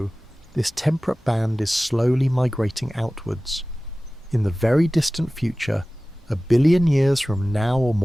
this temperate band is slowly migrating outwards. In the very distant future, 1 billion years from now or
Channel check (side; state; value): both; normal; correlation 0.97